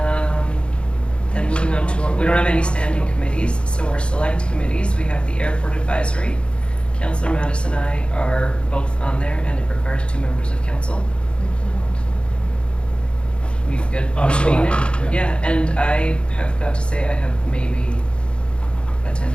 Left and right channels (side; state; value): right; late; 0.056 ms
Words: Then moving on to, we don't have any standing committees, so our select committees, we have the Airport Advisory. Councillor Mattis and I are both on there, and it requires 2 members of council. We good? I'm still being happy, there? Yeah, and I have got to say, I have maybe